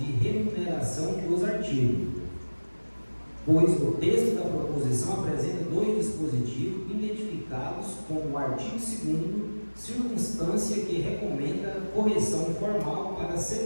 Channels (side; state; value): both; inverted; correlation -1.00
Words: remuneração dos artigos, pois o texto da proposição apresenta dois dispositivos identificados como o artigo 2º, circunstância que recomenda correção formal para